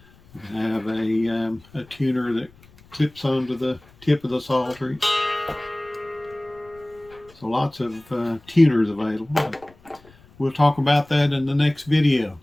You can have a tuner that clips onto the tip of the Psaltery. So lots of tuners available. We'll talk about that in the next video.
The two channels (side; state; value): left; noise; rumble, 27 dB below the sound